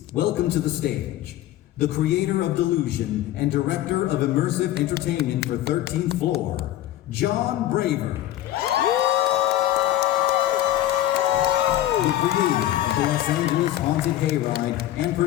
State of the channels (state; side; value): quieter; right; 13.7 dB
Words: welcome to the stage, the creator of Delusion and director of immersive entertainment for 13th Floor, John Braver. The creator of the Los Angeles Haunted Hayride and